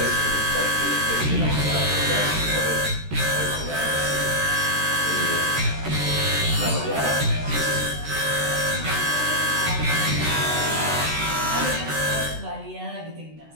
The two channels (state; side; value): late; left; 13 ms